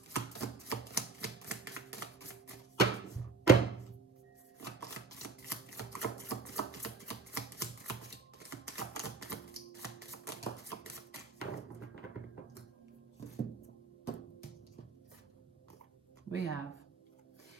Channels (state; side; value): quieter; left; 4.2 dB